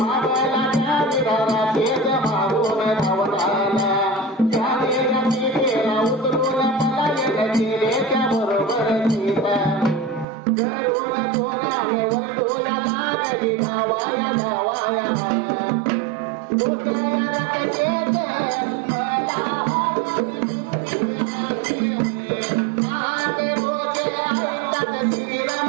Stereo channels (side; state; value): left; drops out; at 10.2 s